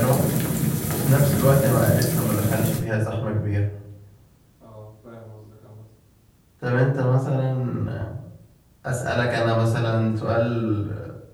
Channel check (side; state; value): both; identical; correlation 1.00